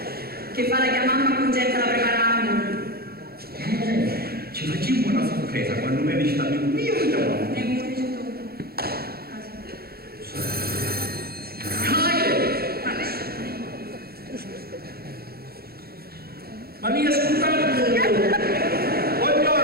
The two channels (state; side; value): late; left; 0.45 ms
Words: Che fa la che mamma congetta la preparammo. Ci facciamo una sorpresa quando mi visto amico mio e giovane. Ne come dice tu? Ma mi ascoltate?